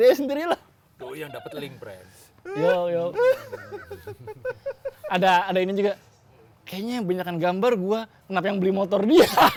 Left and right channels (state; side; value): identical; both; correlation 1.00